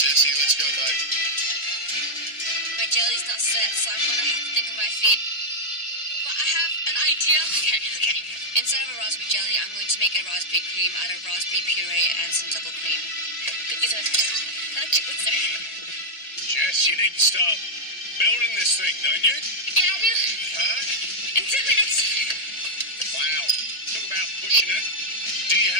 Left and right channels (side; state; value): right; late; 1.8 ms